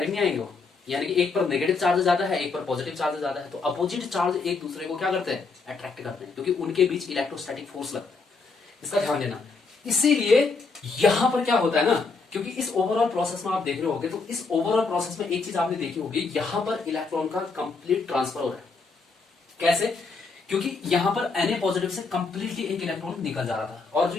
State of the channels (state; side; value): quieter; right; 4.3 dB